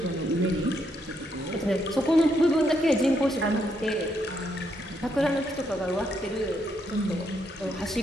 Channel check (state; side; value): normal; both; correlation 0.76